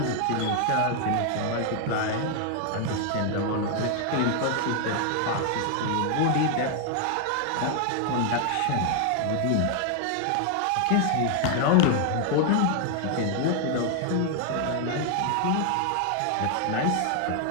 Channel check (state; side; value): different; both; correlation 0.00